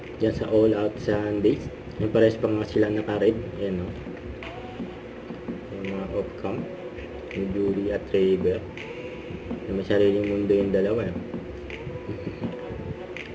Diyan sa All Out Sundays. Yung pares pa nga sila naka-red. Ayan o. Yung mga off-cam. Yung Julie at Ray Bear. May sariling mundo yung dalawa.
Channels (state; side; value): identical; both; correlation 1.00